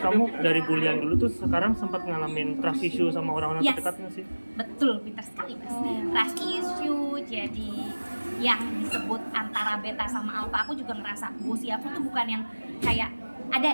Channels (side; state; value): both; inverted; correlation -1.00